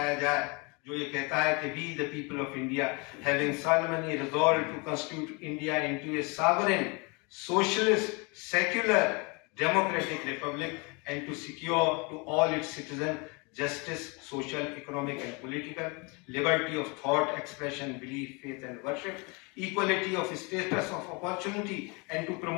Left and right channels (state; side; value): quieter; right; 30.0 dB